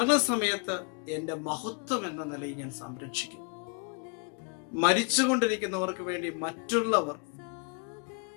എൻ്റെ മഹത്വം എന്ന നിലയിൽ ഞാൻ സംരക്ഷിക്കും. മരിച്ചുകൊണ്ടിരിക്കുന്നവർക്ക് വേണ്ടി മറ്റുള്ളവർ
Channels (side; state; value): right; quieter; 36.3 dB